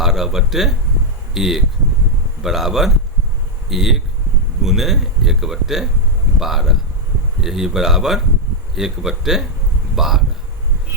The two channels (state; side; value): normal; both; correlation 0.00